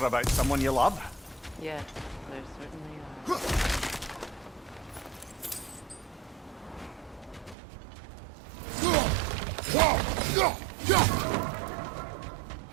about someone you love. Yes, there certainly are.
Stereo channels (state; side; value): drops out; left; at 7.6 s